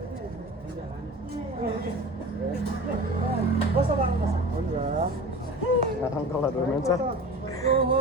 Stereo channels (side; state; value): both; normal; correlation 0.36